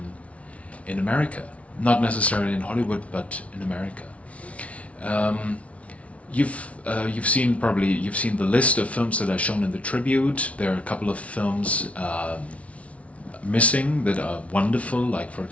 in America. Not necessarily in Hollywood, but in America. You've seen the list of films that are shown in the tribute. There are a couple of films missing that are wonderful, like for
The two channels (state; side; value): late; right; 0.064 ms